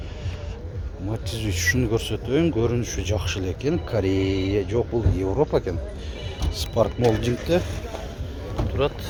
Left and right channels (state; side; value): identical; both; correlation 1.00